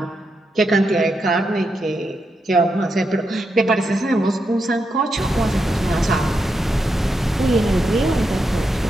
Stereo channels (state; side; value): normal; both; correlation 0.84